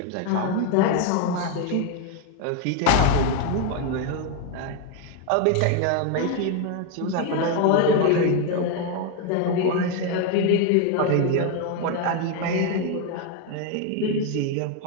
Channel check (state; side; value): different; both; correlation 0.01